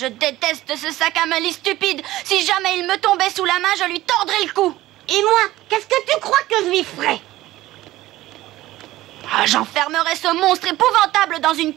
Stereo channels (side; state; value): left; quieter; 16.3 dB